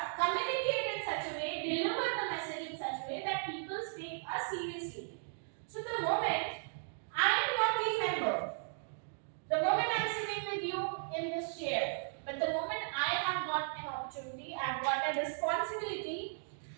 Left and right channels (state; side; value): silent; left; digital silence